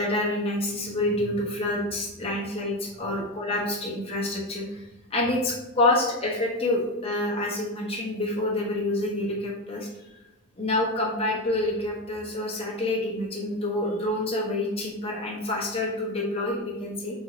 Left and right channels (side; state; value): both; normal; correlation 0.17